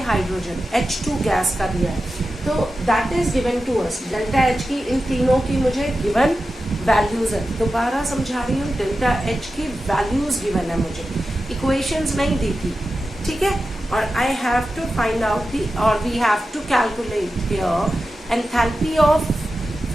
H2 gas का दिया है. तो that is given to us. Delta H की इन तीनों की मुझे गिवन वैल्यूज है. दोबारा समझा रही हूँ, डेल्टा H की वैल्यूज गिवन है मुझे, इक्वेशंस नहीं दी थी. ठीक है, और I have to find out the, और we have to calculate here enthalpy of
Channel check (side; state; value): both; normal; correlation 0.92